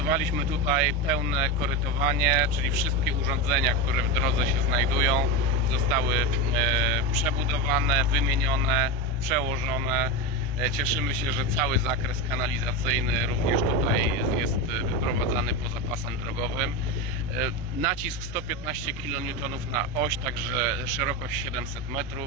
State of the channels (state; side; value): noise; right; hum, 15 dB below the sound